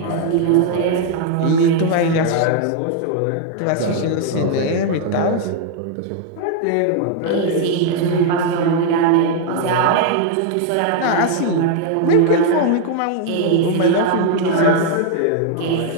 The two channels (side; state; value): both; different; correlation 0.00